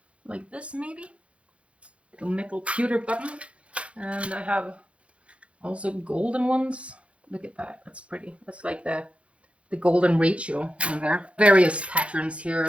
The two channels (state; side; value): late; left; 0.061 ms